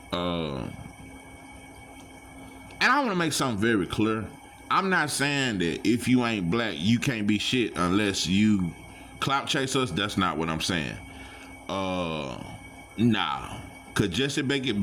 And I want to make something very clear. I'm not saying that if you ain't black, you can't be shit unless you clout chase us. That's not what I'm saying. Nah. Cause Jesse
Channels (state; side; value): identical; both; correlation 1.00